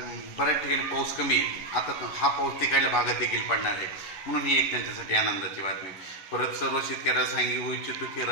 बऱ्याच ठिकाणी पाऊस कमी आहे। आता हा पाऊस तिकडल्या भागात देखील पडणार आहे, म्हणून ही एक त्यांच्यासाठी आनंदाची बातमी। परत सर्व शेतकऱ्याला सांगू इच्छितो की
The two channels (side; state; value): right; late; 11 ms